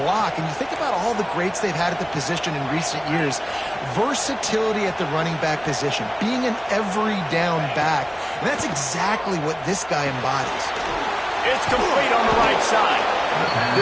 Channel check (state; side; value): identical; both; correlation 1.00